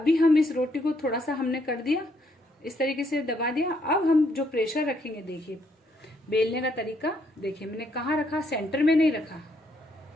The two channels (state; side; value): normal; both; correlation 0.72